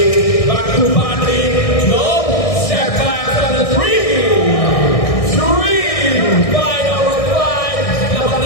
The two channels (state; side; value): late; right; 1.6 ms